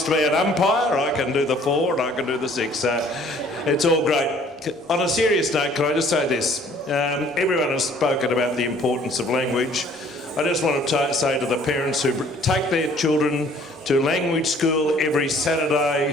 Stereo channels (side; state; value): both; normal; correlation 0.56